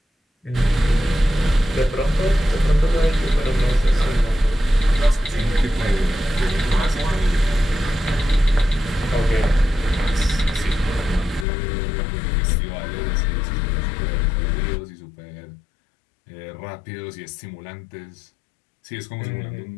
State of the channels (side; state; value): right; drops out; at 11.5 s